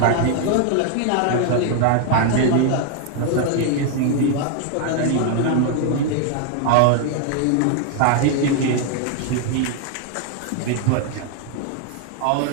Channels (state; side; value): different; both; correlation 0.00